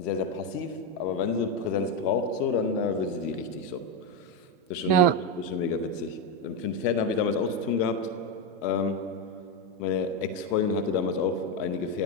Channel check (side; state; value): left; late; 1.3 ms